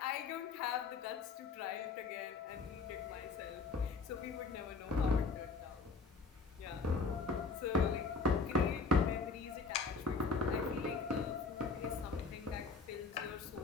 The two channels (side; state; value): right; quieter; 4.4 dB